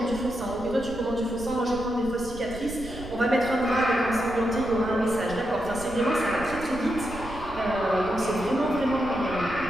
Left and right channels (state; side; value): noise; right; rumble, 13 dB below the sound